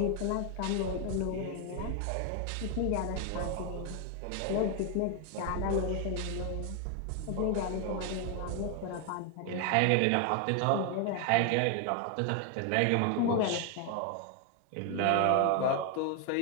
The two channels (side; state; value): both; different; correlation 0.01